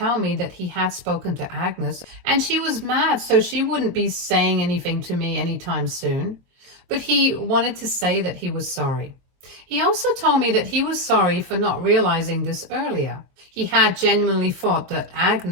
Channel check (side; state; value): left; late; 23 ms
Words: me that he had spoken to Agnes, and she was mad, so she wouldn't be saying anything to me anytime soon. But he wanted to say that he was sorry. He also told me that he was sorry for not realizing this earlier. He had genuinely thought that